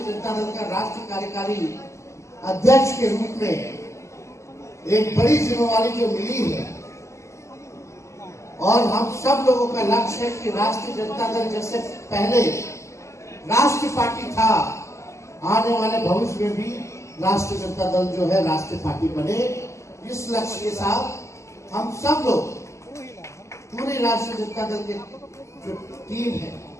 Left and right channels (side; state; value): right; late; 0.14 ms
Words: जनता दल का राष्ट्रीय कार्यकारी अध्यक्ष के रूप में एक बड़ी जिम्मेवारी जो मिली है, और हम सब लोगों का लक्ष्य है कि राष्ट्रीय जनता दल जैसे पहले राष्ट्रीय पार्टी था, आने वाले भविष्य में भी राष्ट्रीय जनता दल जो है राष्ट्रीय पार्टी बने। इस लक्ष्य के साथ हम सब लोग पूरे राष्ट्रीय जनता दल की जो टीम है,